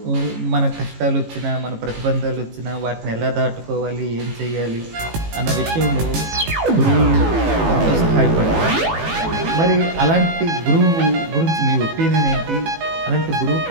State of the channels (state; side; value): late; left; 18 ms